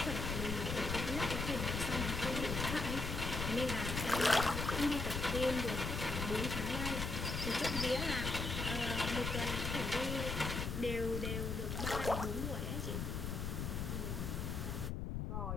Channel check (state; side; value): noise; left; rumble, 2 dB below the sound